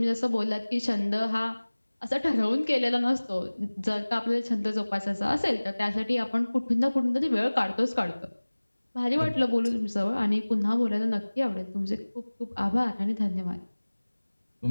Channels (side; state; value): both; inverted; correlation -1.00